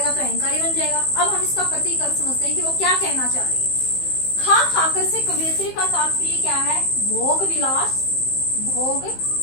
तो अहंकारी बन जाएगा। अब हम इसका प्रतीक अर्थ समझते हैं कि वो क्या कहना चाह रही है। खा खाकर से कवियत्री का तात्पर्य क्या है, भोग विलास, भोग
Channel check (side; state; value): right; late; 15 ms